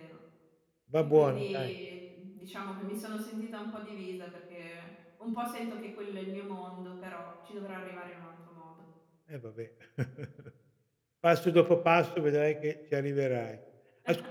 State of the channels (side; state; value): both; identical; correlation 1.00